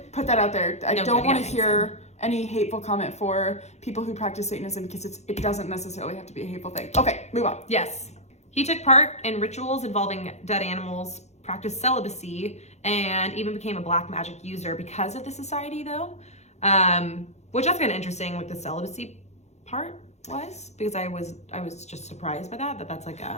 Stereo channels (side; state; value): right; late; 0.32 ms